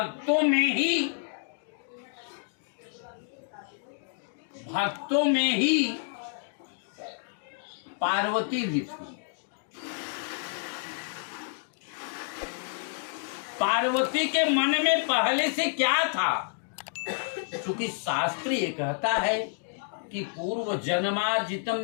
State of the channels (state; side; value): silent; right; digital silence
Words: में ही पार्वती भी थी। पार्वती के मन में पहले से क्या था, क्योंकि शास्त्र ये कहता है कि पूर्व जन्मार्जितम